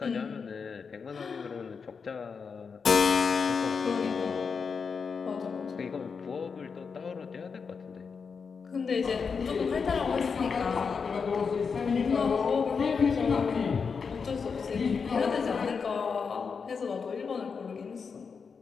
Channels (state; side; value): quieter; right; 5.6 dB